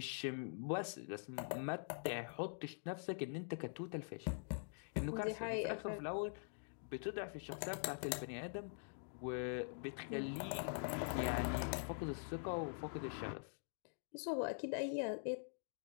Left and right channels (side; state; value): right; silent; digital silence